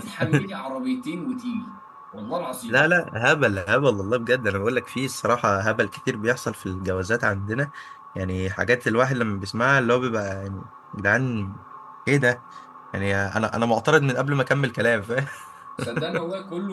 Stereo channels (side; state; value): both; identical; correlation 1.00